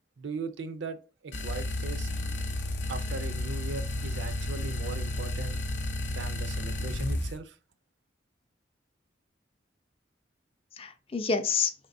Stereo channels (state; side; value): normal; both; correlation 0.56